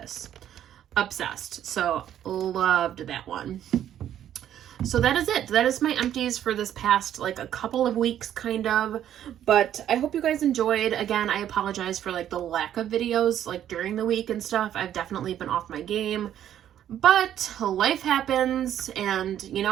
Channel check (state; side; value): quieter; left; 10.8 dB